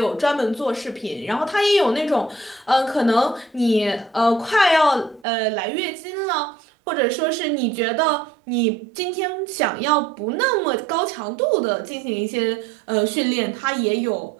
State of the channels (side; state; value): left; drops out; at 5.2 s